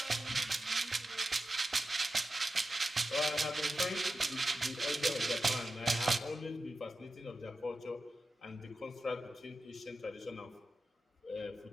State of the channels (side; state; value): both; normal; correlation 0.92